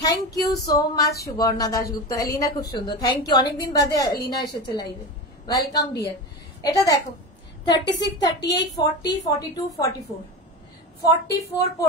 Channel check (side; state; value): both; normal; correlation 0.24